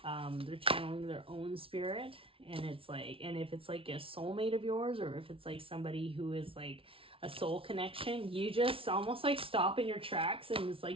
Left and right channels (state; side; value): late; left; 0.26 ms